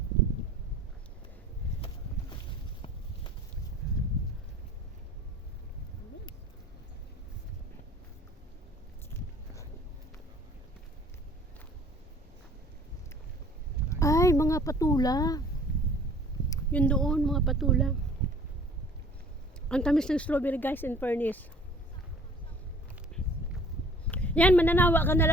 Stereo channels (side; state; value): both; normal; correlation 0.52